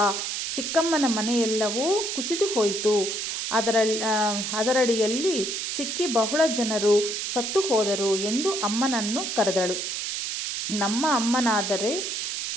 ಚಿಕ್ಕಮ್ಮನ ಮನೆಯೆಲ್ಲವೂ ಕುಸಿದು ಹೋಯಿತು, ಅದರಡಿಯಲ್ಲಿ ಸಿಕ್ಕಿ ಬಹಳ ಜನರು ಸತ್ತು ಹೋದರು ಎಂದು ಅಮ್ಮನನ್ನು ಕರೆದಳು. ನಮ್ಮ ಅಮ್ಮನಾದರೆ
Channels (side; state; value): right; noise; hiss, 3 dB below the sound